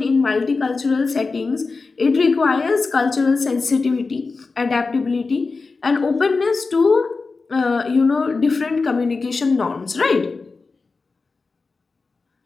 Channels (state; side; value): quieter; right; 4.1 dB